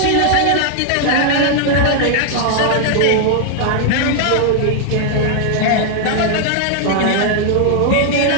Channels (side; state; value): both; different; correlation -0.01